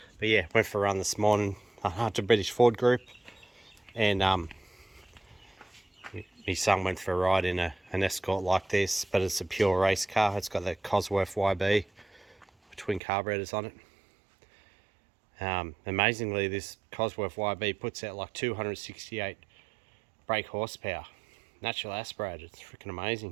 but yeah, went for a run this morning to British Ford Group, and my son went for a ride in an Escort like this, but it's a pure race car. It's got the Cosworth YB twin carburetors on it. Amazingly, this Cosworth YB puts out like 268 brake horsepower. Natural aspirated. It's freaking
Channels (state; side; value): drops out; left; at 13.0 s